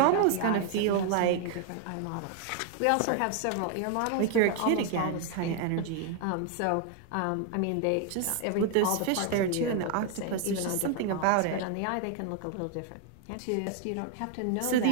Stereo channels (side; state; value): both; different; correlation 0.00